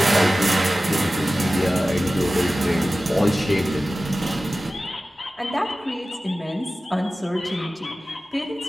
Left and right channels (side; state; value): both; normal; correlation 0.96